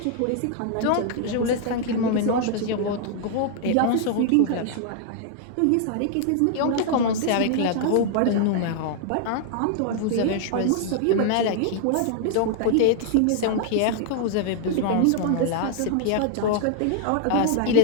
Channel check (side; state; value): both; different; correlation -0.01